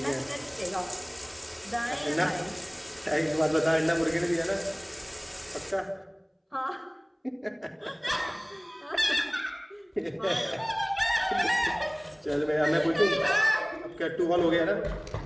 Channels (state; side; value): identical; both; correlation 1.00